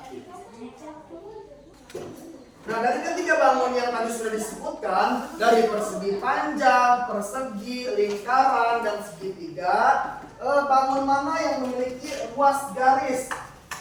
Nah, dari ketiga bangun yang tadi sudah disebutkan, dari persegi panjang, persegi, lingkaran, dan segitiga, bangun mana yang memiliki ruas garis?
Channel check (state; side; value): identical; both; correlation 1.00